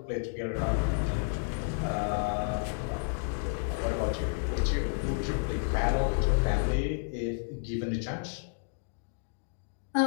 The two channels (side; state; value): right; silent; digital silence